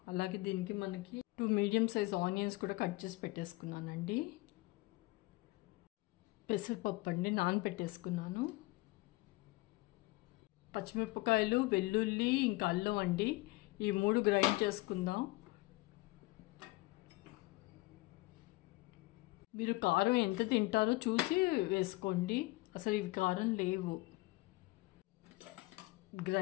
అలాగే దీనికి మనకి 2 మీడియం సైజ్ ఆనియన్స్ కూడా కట్ చేసి పెట్టేసుకున్నానండి. పెసరపప్పు అండి నానబెట్టేసుకున్నాను. పచ్చిమిరపకాయలు, వెల్లుల్లి, ఇంకా అల్లం అండి. ఈ 3 గ్రైండ్ చేసుకుందాం. మీరు కారం ఎంత తింటారో చూసి వేసుకోండి. అసలు ఇవి కారం లేవు.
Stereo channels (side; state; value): right; quieter; 21.6 dB